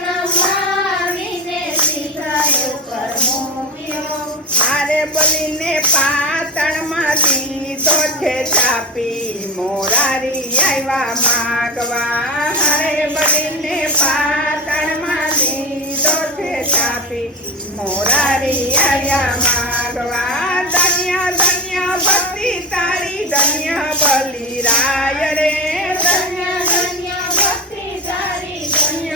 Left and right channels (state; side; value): normal; both; correlation 0.24